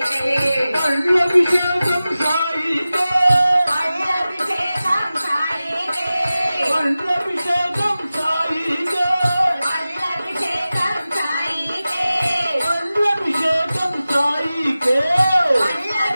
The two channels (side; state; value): both; inverted; correlation -0.95